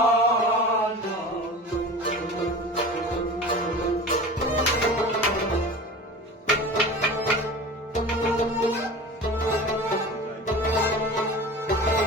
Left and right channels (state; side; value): normal; both; correlation 0.35